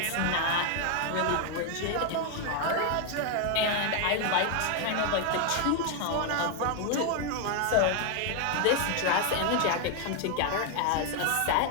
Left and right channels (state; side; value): different; both; correlation 0.01